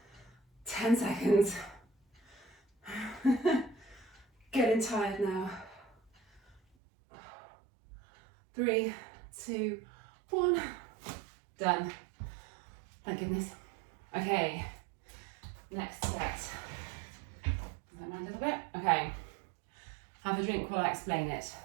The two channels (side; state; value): left; drops out; at 6.6 s